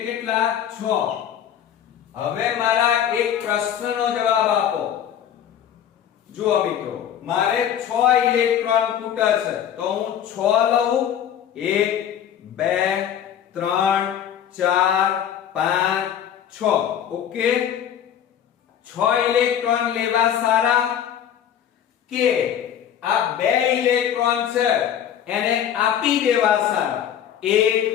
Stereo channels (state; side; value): quieter; right; 9.7 dB